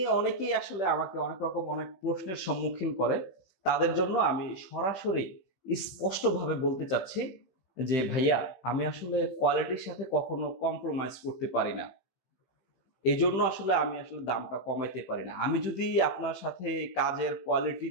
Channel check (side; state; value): right; late; 16 ms